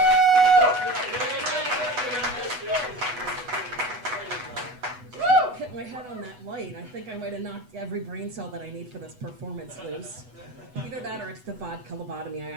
Hit my head on that light. I think I might have knocked every brain cell that I need for this performance loose. Either that or it's the vodka lobotomy I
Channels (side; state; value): left; late; 8.1 ms